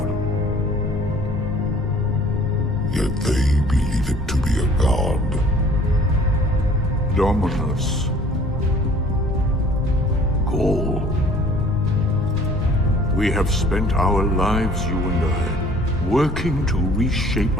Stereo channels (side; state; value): both; normal; correlation 0.53